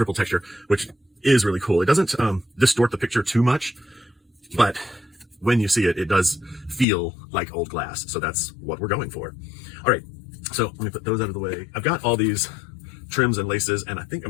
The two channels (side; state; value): right; drops out; at 6.9 s